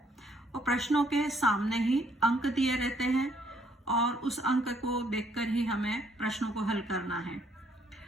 और प्रश्नों के सामने ही अंक दिए रहते हैं और उस अंक को देखकर ही हमें प्रश्नों को हल करना है।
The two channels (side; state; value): both; normal; correlation 0.67